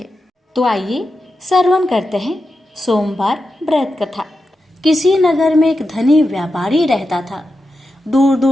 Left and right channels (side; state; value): both; normal; correlation 0.89